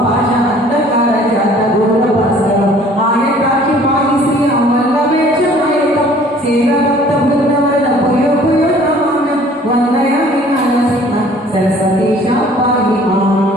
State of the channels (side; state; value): both; normal; correlation 0.53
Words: భాష అంధకార జాత ఘోర భాస్కరం ఆయకాక్షి పాయి శ్రీ అమల్లవేక్ష మయకం సేవ భక్త బృందవన పుయో పుయో నమామ్యం వందయామి నరసింహ సరస్వతీశ పాయి